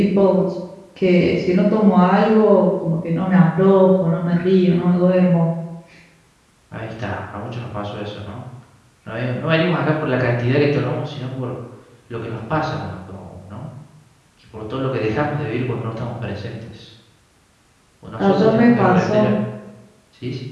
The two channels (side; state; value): both; identical; correlation 1.00